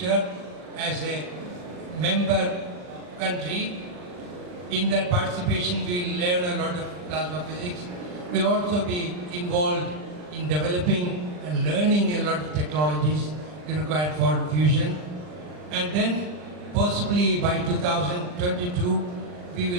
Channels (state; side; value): late; left; 39 ms